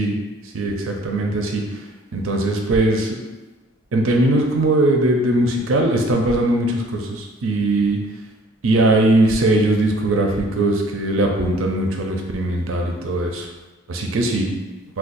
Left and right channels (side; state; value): both; normal; correlation 0.55